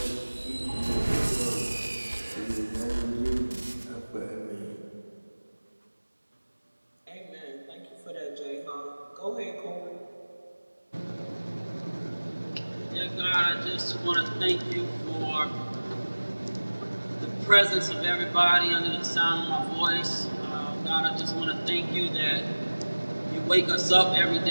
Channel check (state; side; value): inverted; both; correlation -1.00